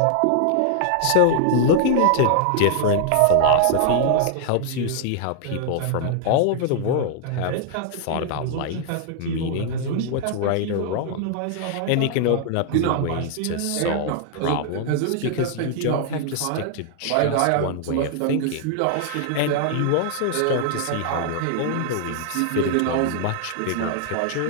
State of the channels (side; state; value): both; different; correlation 0.00